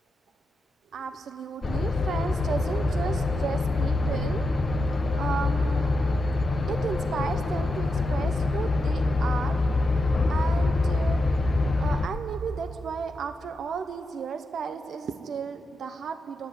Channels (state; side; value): normal; both; correlation 0.86